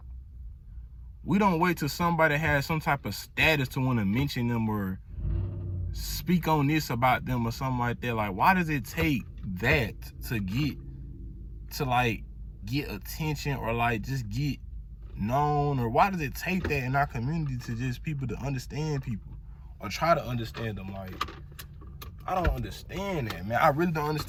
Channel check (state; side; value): identical; both; correlation 1.00